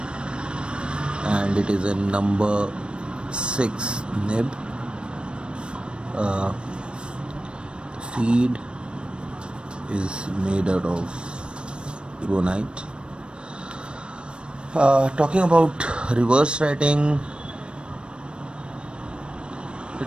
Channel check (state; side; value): late; left; 0.056 ms